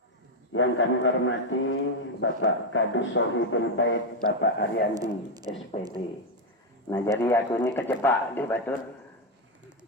Yang kami hormati Bapak Kadus Sohibul Bait, Bapak Aryandi SPD. Nah, jadi aku ini kecepak di batur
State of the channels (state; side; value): normal; both; correlation 0.05